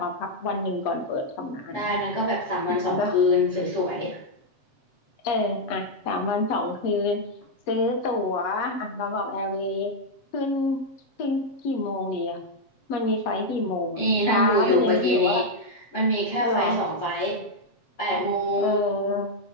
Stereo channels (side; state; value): right; late; 7.6 ms